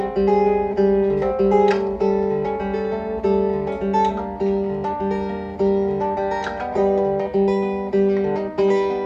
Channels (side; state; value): both; identical; correlation 1.00